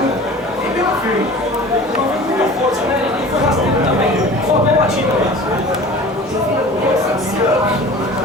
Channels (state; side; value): normal; both; correlation 0.41